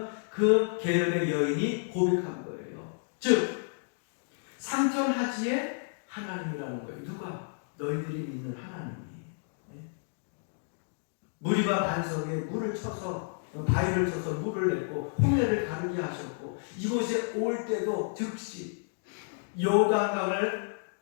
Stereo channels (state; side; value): silent; right; digital silence